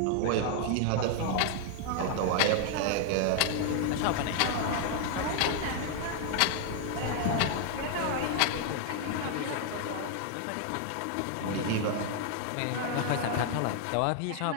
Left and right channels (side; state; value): both; different; correlation 0.00